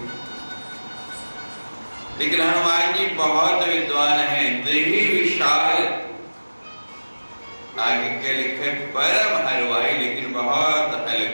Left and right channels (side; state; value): both; inverted; correlation -1.00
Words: लेकिन हनुमान जी बहुत विद्वान हैं, देही विशाल। आगे के लिखे परम हलवाई, लेकिन बहुत